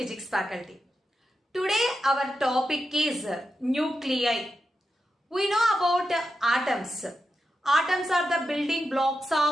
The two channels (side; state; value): both; normal; correlation 0.88